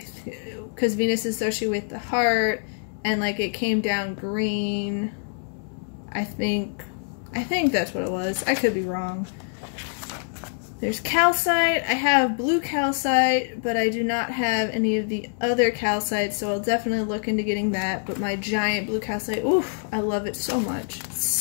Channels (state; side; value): silent; right; digital silence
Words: Venus is associated with the heart and like it came down green. I think that's what it was. I could be wrong. There's calcite. I have blue calcite, but I do not have any of the other calcites, so I'll definitely look into getting that. But my giant blue calcite, oof, I love it so much. It's